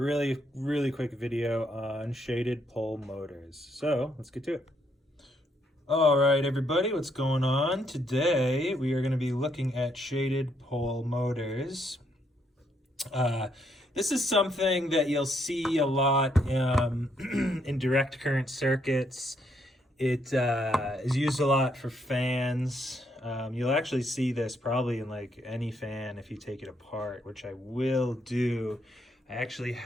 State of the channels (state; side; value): normal; both; correlation 0.74